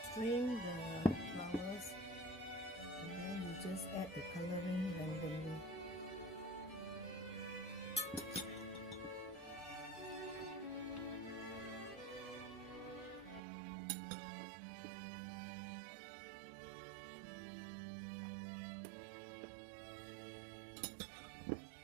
Strain the flowers and then you just add the coloring randomly.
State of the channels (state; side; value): drops out; left; at 13.4 s